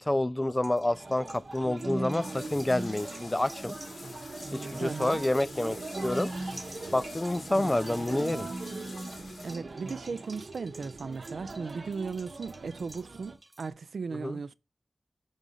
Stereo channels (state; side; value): normal; both; correlation 0.97